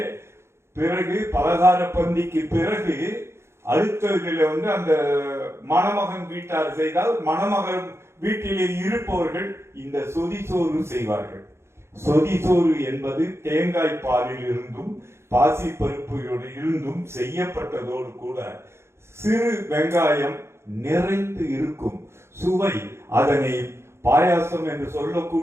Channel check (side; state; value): left; late; 0.13 ms